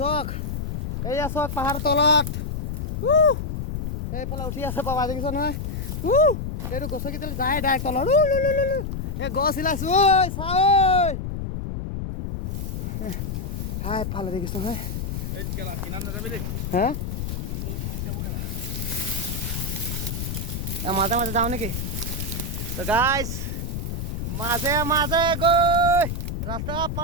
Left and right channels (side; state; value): left; noise; rumble, 4 dB below the sound